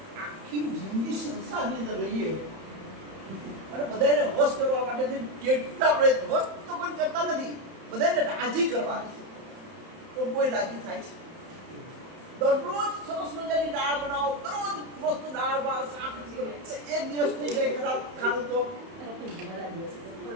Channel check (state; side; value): late; left; 31 ms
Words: આખી જિંદગી સંસારની અંદર રહીએ અને બધાને વશ કરવા માટે કેટલા પ્રયત્ન, વશ તો કોઈ કરતા નથી, બધાને રાજી કરવા છે તો કોઈ રાજી થાય છે? દરરોજ સરસ મજાની દાળ બનાવો, દરરોજ મસ્ત દાળ ભાત શાક, એક દિવસ થઈ જાય ખરાબ ખાવું તો બધા દિવસ।